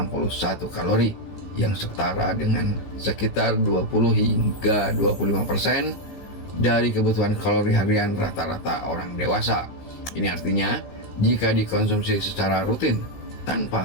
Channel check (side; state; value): right; late; 15 ms